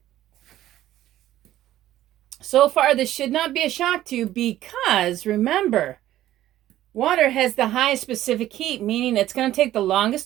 So far, this should not be a shock to you because, remember, water has the highest specific heat, meaning it's going to take the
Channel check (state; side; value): quieter; left; 13.7 dB